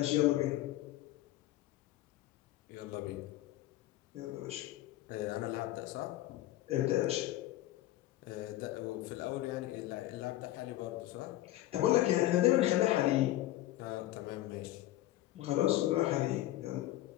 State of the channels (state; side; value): quieter; right; 15.5 dB